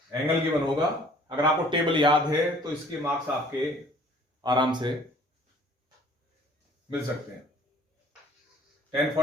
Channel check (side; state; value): both; normal; correlation 0.54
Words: एंगल गिवन होगा, अगर आपको टेबल याद है तो इसके मार्क्स आपके आराम से मिल सकते हैं। tan